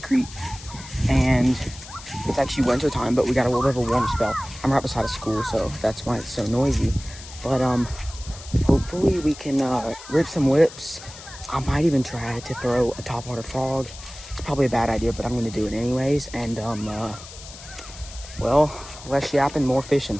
and it's actually winter time, but we got a little bit of a warm spell. I'm right beside a school, so that's why it's so noisy. But hopefully we can rip some whips. I might even try to throw a topwater frog. It's probably a bad idea, but I'm gonna do it anyways. And well, less yapping, more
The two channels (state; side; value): noise; left; hiss, 16 dB below the sound